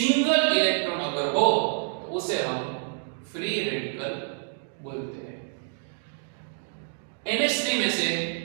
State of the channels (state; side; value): silent; left; digital silence